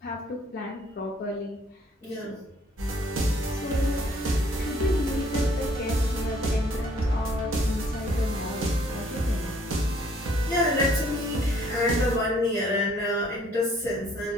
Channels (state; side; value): normal; both; correlation 0.62